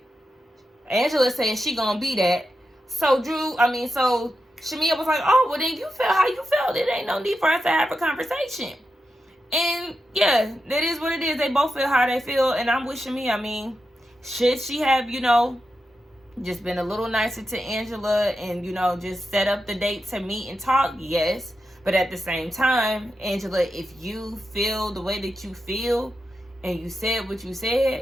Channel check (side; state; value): both; normal; correlation 0.88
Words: Angela said she gonna be that. So Shamia was like, oh, well then you feel how you felt. It ain't no need for us to have a conversation. And yeah, that is what it is. They both feel how they feel. And I'm with Shamia. I mean, should she have, you know, just been a little nicer to Angela and, you know, just set up the date to meet and talk? Yes. But at the same time, Angela, if you feel the way that you feel and you said what you